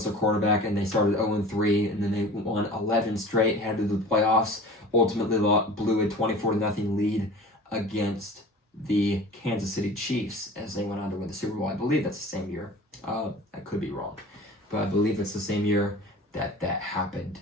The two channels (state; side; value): normal; both; correlation 0.41